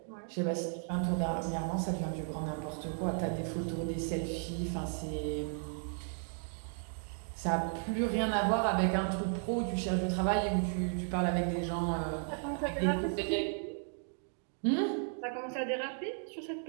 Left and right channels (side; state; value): left; silent; 55 dB below the other